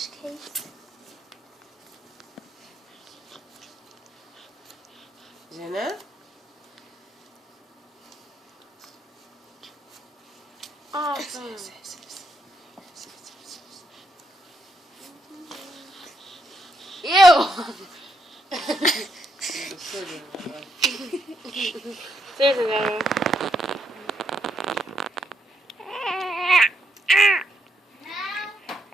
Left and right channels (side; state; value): both; normal; correlation 0.77